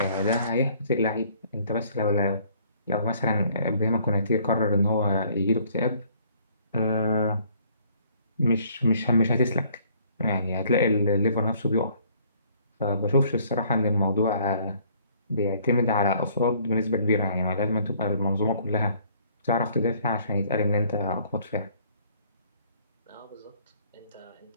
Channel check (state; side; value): inverted; both; correlation -0.60